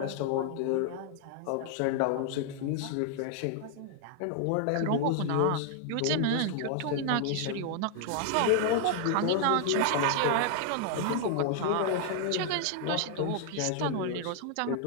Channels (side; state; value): both; different; correlation 0.00